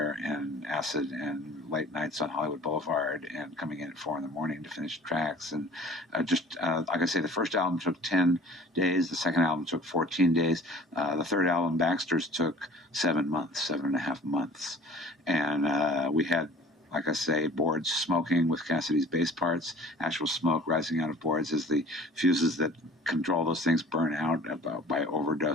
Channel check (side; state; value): both; normal; correlation 0.47